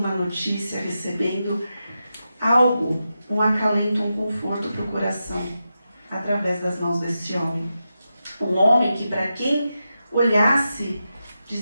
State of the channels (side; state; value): both; inverted; correlation -0.89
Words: notícia, recebendo algo, um acalento, um conforto para o coração, através das mãos desse homem. Um homem que, para quem olhasse,